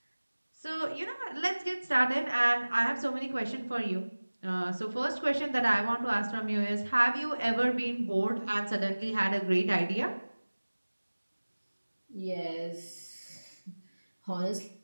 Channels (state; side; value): inverted; both; correlation -1.00